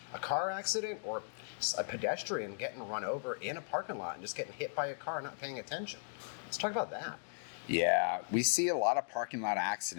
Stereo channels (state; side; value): silent; right; digital silence